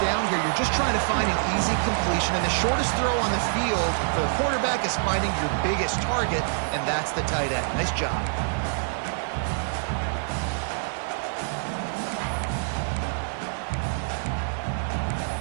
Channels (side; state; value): left; silent; 56 dB below the other